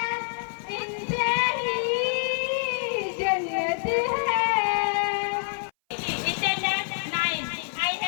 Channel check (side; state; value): right; silent; 58 dB below the other